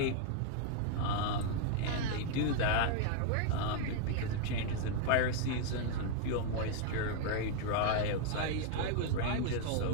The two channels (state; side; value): different; both; correlation 0.00